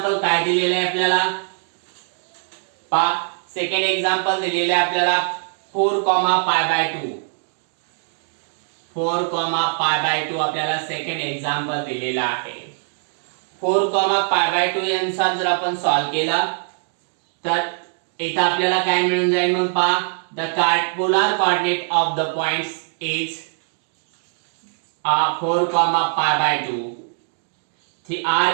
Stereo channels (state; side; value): silent; left; digital silence